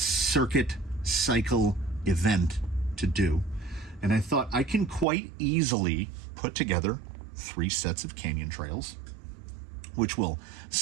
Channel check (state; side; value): drops out; left; at 5.1 s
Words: cycle event to do. And I thought I can quite easily put together 3 sets of canyon trails, which will